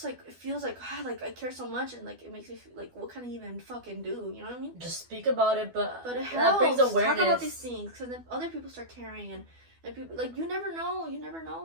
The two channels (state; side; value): late; left; 12 ms